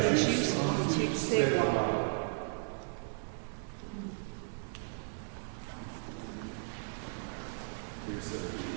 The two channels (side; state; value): left; silent; 54 dB below the other